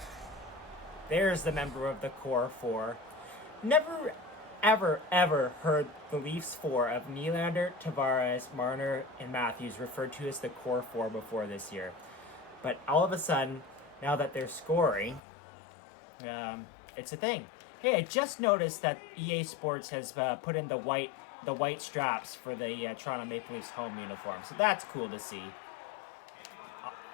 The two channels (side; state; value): right; drops out; at 15.2 s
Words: There's the member of the core four. Never, ever heard the Leafs four of Nylander, Tavares, Marner, and Matthews referred to as the core four before this year. But all of a sudden, now that they're scoring, it's a thing. Hey, I just noticed that EA Sports has put in the white straps for the Toronto Maple Leafs home uniform. So that's cool to see.